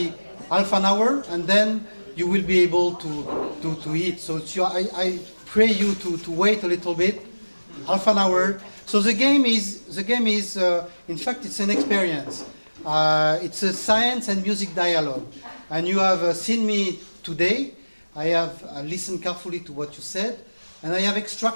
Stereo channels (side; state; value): both; inverted; correlation -1.00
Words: half an hour, and then you will be able to eat. So I pray you to wait a little bit, half an hour. So the game is in fact it's an experience. It's a science and music dialogue, and you have seen me today. I have listened carefully to what you said, and I have